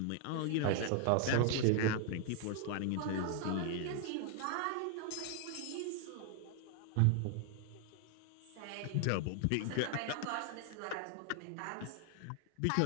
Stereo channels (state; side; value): different; both; correlation 0.00